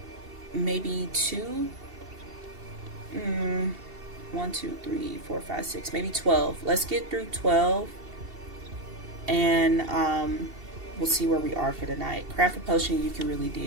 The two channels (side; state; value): left; late; 2.7 ms